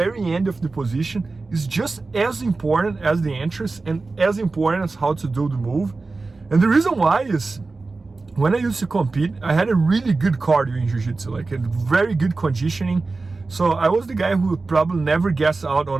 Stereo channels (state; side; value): quieter; left; 3.7 dB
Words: end of the position, is just as important as the entrance and as important as how to do the move. And the reason why is, when I used to compete, I had a really good cardio in jiu-jitsu, like a very good conditioning. So I was the guy who would probably never gas out